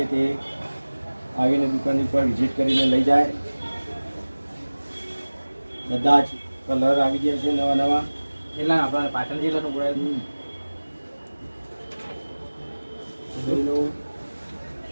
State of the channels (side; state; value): both; inverted; correlation -1.00